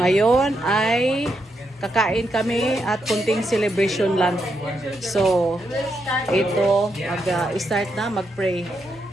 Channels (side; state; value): both; normal; correlation 0.81